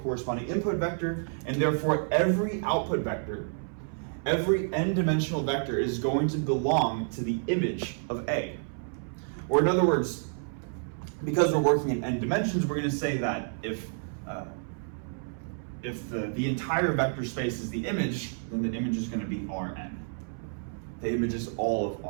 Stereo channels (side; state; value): left; silent; 58 dB below the other